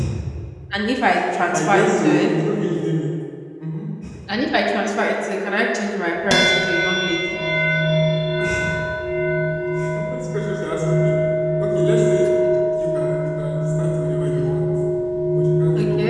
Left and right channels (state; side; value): identical; both; correlation 1.00